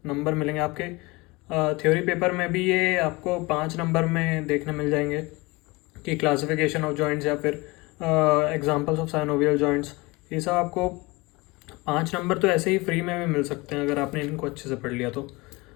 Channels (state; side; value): quieter; right; 23.9 dB